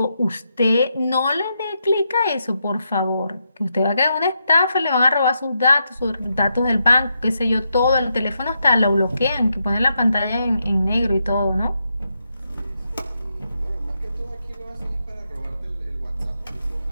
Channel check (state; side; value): inverted; both; correlation -0.83